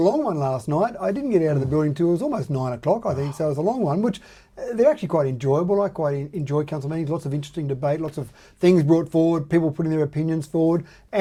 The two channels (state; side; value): identical; both; correlation 1.00